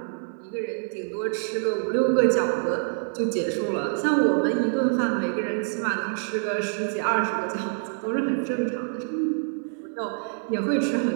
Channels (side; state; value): left; silent; digital silence